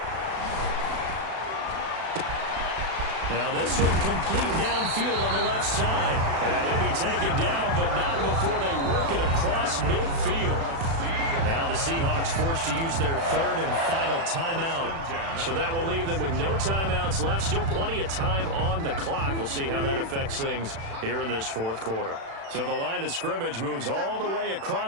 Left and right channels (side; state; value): left; late; 36 ms